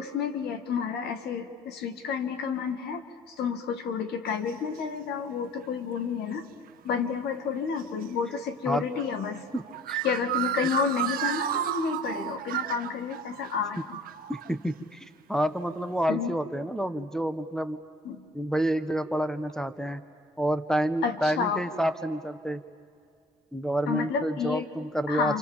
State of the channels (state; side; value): normal; both; correlation 0.51